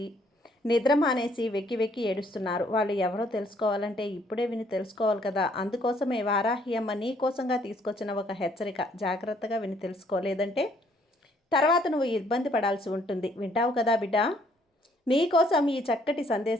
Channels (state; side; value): normal; both; correlation 0.65